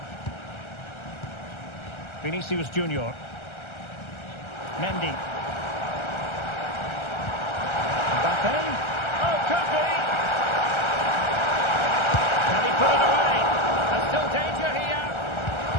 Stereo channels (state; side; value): late; right; 1.3 ms